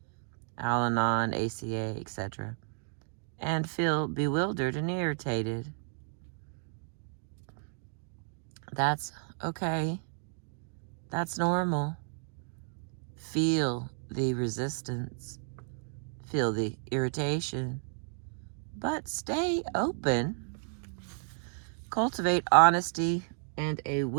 Al-Anon, ACA, etc., and feel bewildered and irritated. That's okay. That's normal. Feel the resistance. Feel the irritation. But stay open. Cultivate honesty and a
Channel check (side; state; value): left; silent; 56 dB below the other